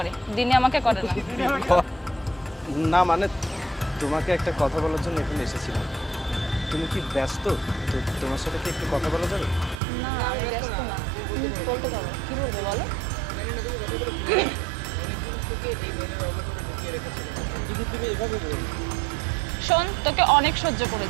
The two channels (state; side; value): drops out; left; at 9.8 s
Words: দিনে আমাকে করে না। না মানে তোমাকে একটা কথা বলার জন্য এখানে এসেছিলাম। তুমি কি ব্যস্ত? তো তোমার সাথে কি একটু কথা বলা যাবে? না আমি ব্যস্ত না, তুমি বলতে পারো, কি বলবে বলো। যদি তুমি এভাবে বলো। শোন, তোকে অনেক সহ্য